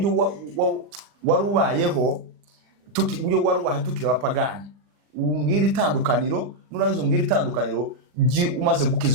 warubayeho uburyo warubaye tukira abapagani. Umbwira itandukaniro, nurangiza umbwira itandukaniro umaze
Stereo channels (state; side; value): late; left; 40 ms